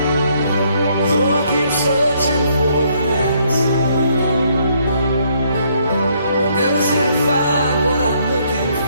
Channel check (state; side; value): inverted; both; correlation -0.69